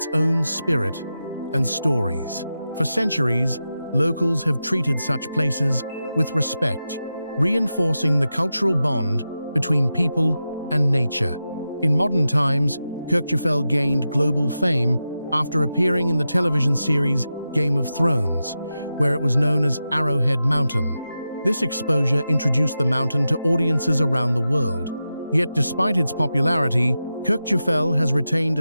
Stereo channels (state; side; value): inverted; both; correlation -0.91